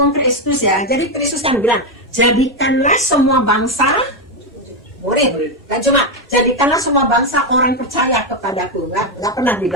Kristus ya. Jadi Kristus kan bilang, jadikanlah semua bangsa murid. Kan cuma, jadikanlah semua bangsa orang percaya kepadaku. Nggak pernah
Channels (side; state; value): both; normal; correlation 0.06